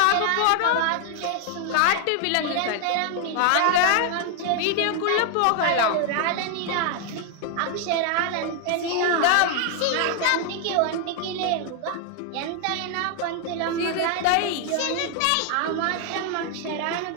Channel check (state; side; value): different; both; correlation 0.00